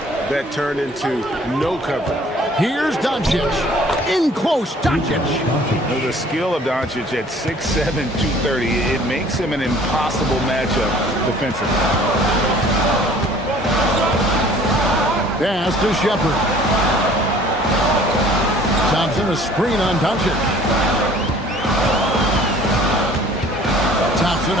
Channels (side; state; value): both; normal; correlation 0.52